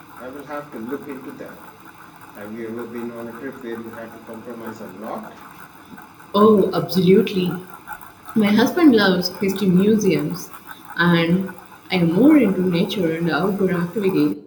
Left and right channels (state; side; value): identical; both; correlation 1.00